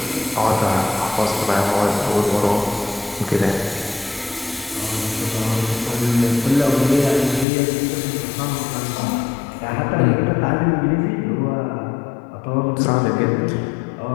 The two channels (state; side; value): drops out; right; at 7.5 s